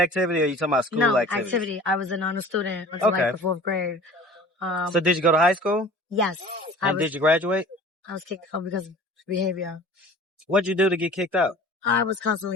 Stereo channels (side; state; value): both; normal; correlation 0.44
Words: or you talking about school No, activity? I was an honor student until Okay. like the 4th grade. So did you go to high school? Yes, And did you graduate? I was kicked out because of behavior. What'd you do to get kicked out? I was